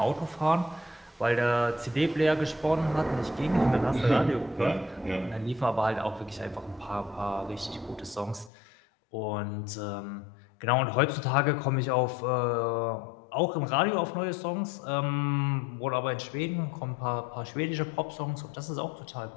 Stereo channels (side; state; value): right; drops out; at 8.5 s